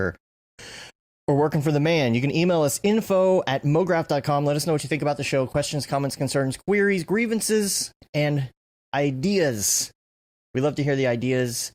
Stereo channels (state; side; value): identical; both; correlation 1.00